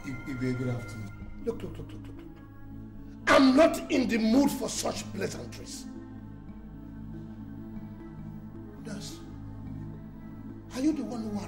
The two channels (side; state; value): both; identical; correlation 1.00